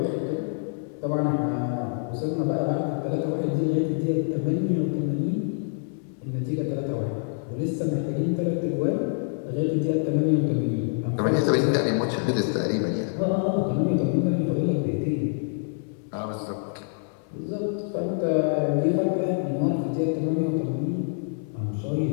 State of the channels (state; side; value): silent; right; digital silence